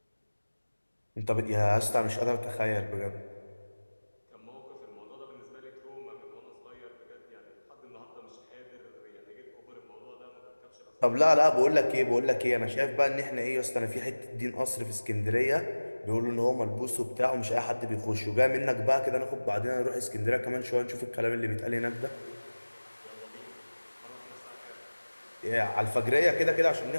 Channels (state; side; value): inverted; both; correlation -1.00